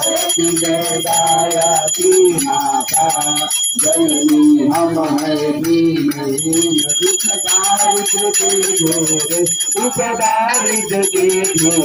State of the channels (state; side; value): identical; both; correlation 1.00